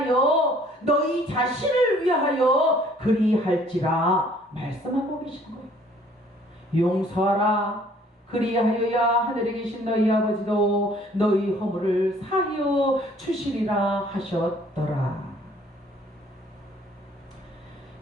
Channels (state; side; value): normal; both; correlation 0.58